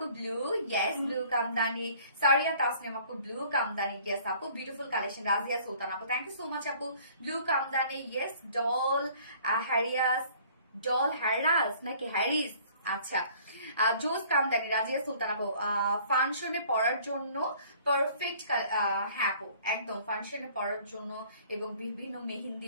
blue, yes blue kamdani. Saria Tasnim আপু ব্লু কামদানি, ইয়েস আপু বিউটিফুল কালেকশন। রাজিয়া সুলতান আপু, থ্যাংক ইউ সো মাচ আপু, ব্লু কামদানি, ইয়েস। ডল হ্যারিয়াস, ডল হ্যারাস নাকি হ্যারিস, আচ্ছা। জোস কামদানি, রাজিয়া সুলতান আপু, ফাংশনে পড়ার জন্য পারফেক্ট, হ্যাঁ আপু একদম ফাংশনে পড়ার জন্য এবং বিভিন্ন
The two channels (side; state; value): both; inverted; correlation -0.54